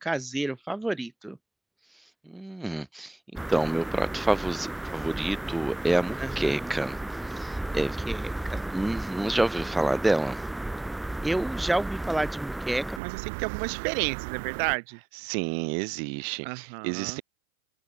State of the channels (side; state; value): left; drops out; at 13.0 s